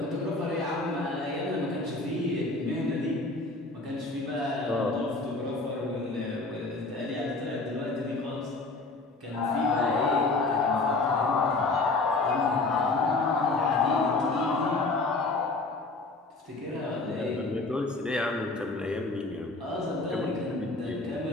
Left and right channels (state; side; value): quieter; right; 3.4 dB